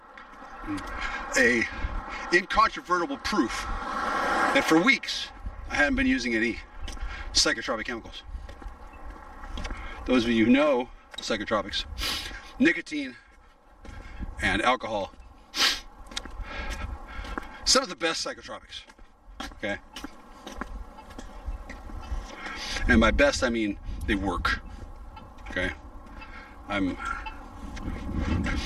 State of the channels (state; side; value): identical; both; correlation 1.00